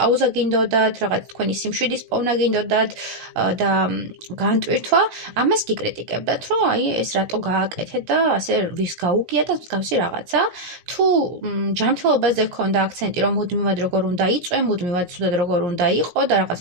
გინდოდათ, რაღაც თქვენი სიმშვიდის პოვნა გინდოდათ და განტვირთვა, ამას გიკრიტიკებდათ, რომ აი ეს რატო გააკეთეთ და ასე ვის გაუგია და მსგავსი რაღაცა. თუ ჯანმრთელობაზე გქონდა აქცენტი, რომ მუდმივად როგორ უნდა იწვე, მუდმივად ცუდად როგორ უნდა იყო და რაღაც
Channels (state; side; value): late; left; 17 ms